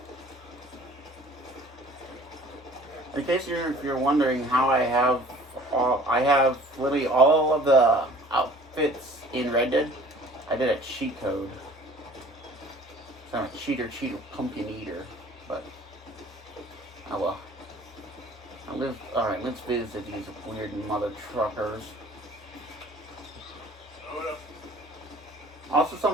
In case you're wondering how I have literally all of the outfits in Red Dead. I did a cheat code. It's not a cheater, pumpkin eater, but oh well. Alright, let's visit these weird mother truckers. Also,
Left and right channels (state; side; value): normal; both; correlation 0.50